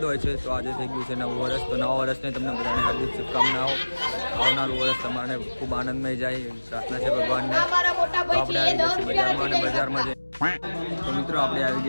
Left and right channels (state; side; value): inverted; both; correlation -1.00